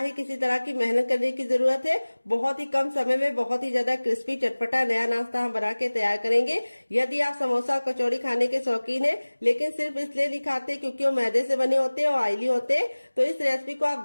किसी तरह की मेहनत करने की जरूरत है। बहुत ही कम समय में बहुत ही ज्यादा क्रिस्पी चटपटा नया नाश्ता हम बना के तैयार करेंगे। यदि आप समोसा और कचौड़ी खाने के शौकीन है लेकिन सिर्फ इसलिए नहीं खाते क्योंकि वो मैदे से बने होते हैं और ऑयली होते हैं, तो इस रेसिपी को आप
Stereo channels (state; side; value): inverted; both; correlation -1.00